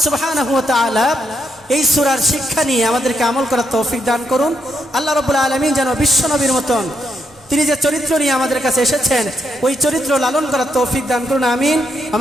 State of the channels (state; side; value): normal; both; correlation 0.79